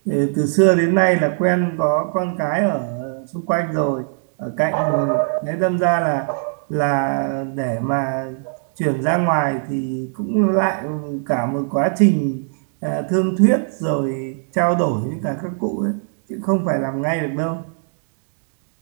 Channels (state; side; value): silent; left; digital silence